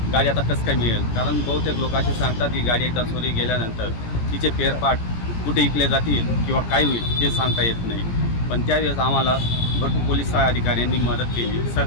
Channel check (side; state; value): right; late; 17 ms